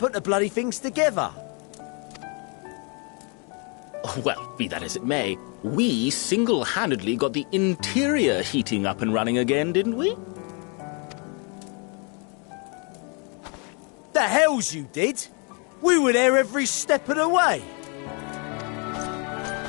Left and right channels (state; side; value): quieter; right; 35.2 dB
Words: the bloody things together. Well, be that as it may, we single-handedly got the interior heating up and running again, didn't we? The hells you did! We were there every step of the way.